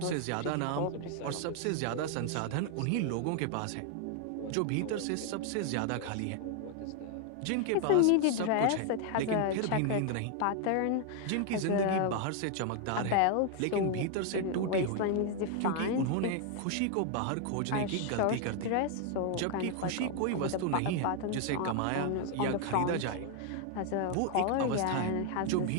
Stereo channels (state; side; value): different; both; correlation 0.00